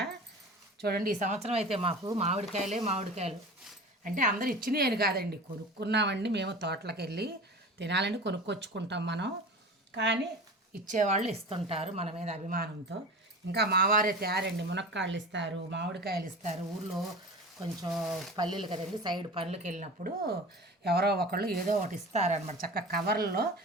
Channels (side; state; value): both; normal; correlation 0.34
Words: చూడండి, ఈ సంవత్సరం అయితే మాకు మామిడికాయలు అంటే అందరు ఇచ్చినాయి అని కాదండి, కొనుక్కున్నామండి. మేము తోటలకు వెళ్ళి తినాలని కొనుక్కొచ్చుకుంటాం మనం, కానీ ఇచ్చేవాళ్ళు ఇస్తుంటారు మన మీద అభిమానంతో. ఇంకా మావారే తయారండి, మునక్కాళ్ళు ఇస్తారు, మామిడికాయలు ఇస్తారు. ఊళ్ళో కొంచెం పల్లెలు కదండి, సైడ్ పనులకు వెళ్ళినప్పుడు ఎవరో ఒకళ్ళు ఏదో ఒకటి ఇస్తారనమాట. చక్కగా కవర్లో